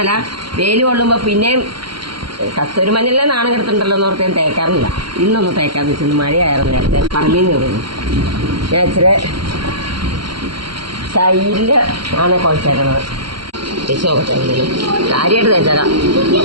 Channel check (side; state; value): left; late; 0.73 ms